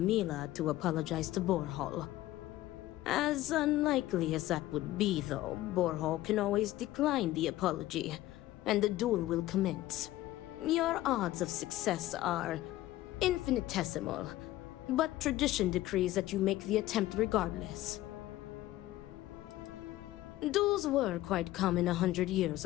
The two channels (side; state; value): right; quieter; 15.8 dB